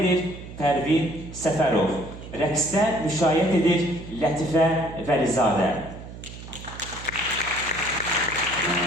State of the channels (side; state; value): right; noise; hum, 13 dB below the sound